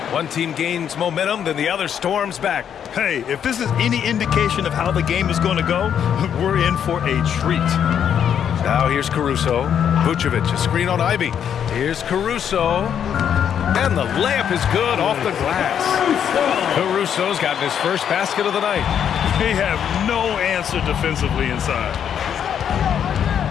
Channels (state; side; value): quieter; right; 8.7 dB